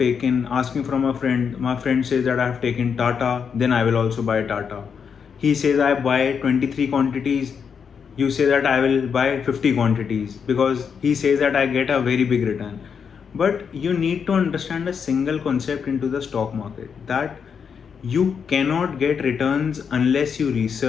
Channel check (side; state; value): right; quieter; 6.7 dB